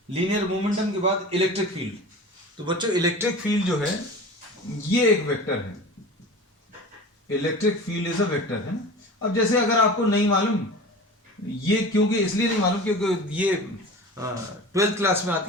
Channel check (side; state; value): both; normal; correlation 0.36